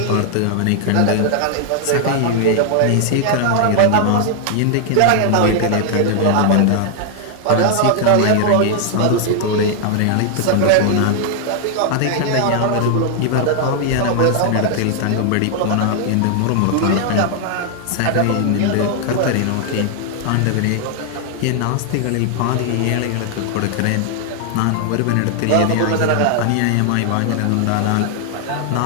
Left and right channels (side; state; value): both; different; correlation 0.00